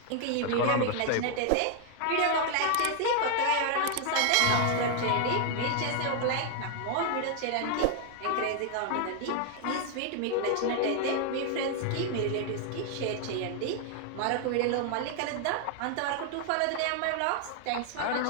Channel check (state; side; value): different; both; correlation 0.00